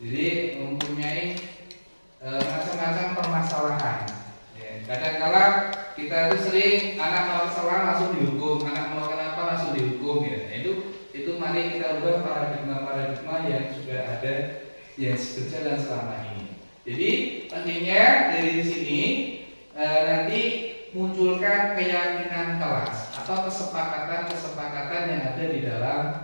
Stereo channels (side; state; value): both; inverted; correlation -1.00